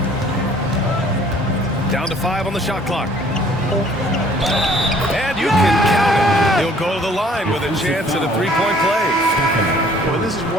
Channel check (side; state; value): both; normal; correlation 0.57